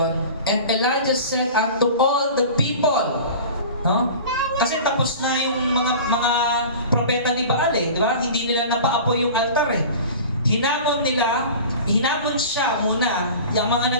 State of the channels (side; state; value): both; inverted; correlation -0.38